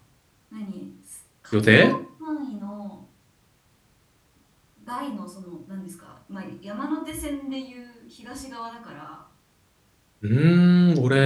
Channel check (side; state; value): both; identical; correlation 1.00